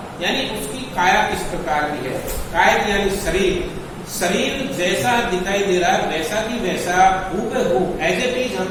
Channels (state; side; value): identical; both; correlation 1.00